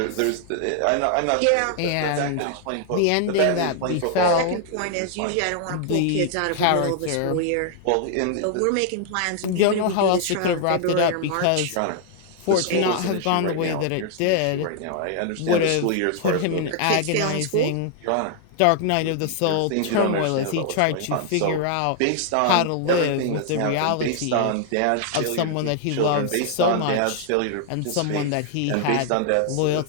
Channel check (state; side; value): different; both; correlation 0.00